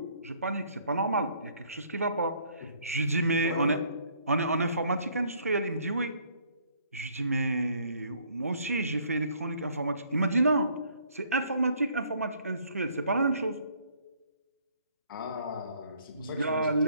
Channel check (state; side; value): inverted; both; correlation -0.63